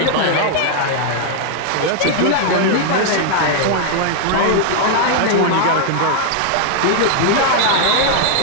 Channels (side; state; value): both; different; correlation 0.00